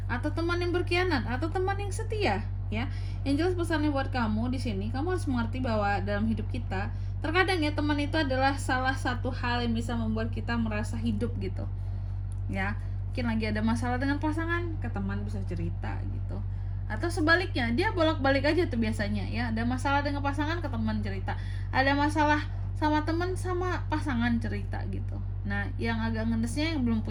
atau teman yang berkhianat, atau teman yang setia ya? Yang jelas pesannya buat kamu di sini, kamu harus mengerti bahwa dalam hidup kita terkadang ya teman itu adalah salah satu hal yang bisa membuat kita merasa hidup gitu ya. Mungkin lagi ada masalah dengan pasangan, ke teman bisa cerita gitu, atau sebaliknya dia bolak-balik aja tuh biasanya ya, ada masalah dengan pasangan ke teman cerita, ada masalah sama teman sama pasangan cerita gitu. Nah yang agak ngedesnya yang belum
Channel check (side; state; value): both; identical; correlation 1.00